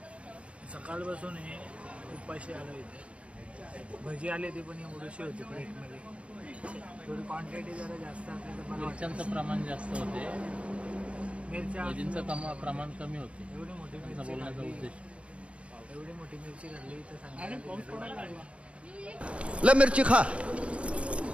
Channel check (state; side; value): late; left; 0.062 ms